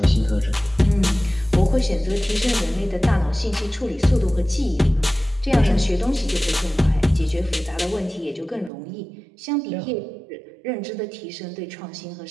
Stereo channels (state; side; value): drops out; left; at 8.7 s